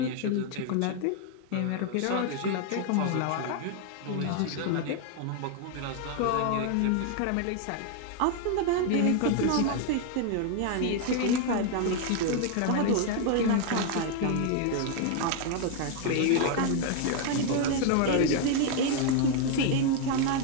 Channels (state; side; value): different; both; correlation 0.00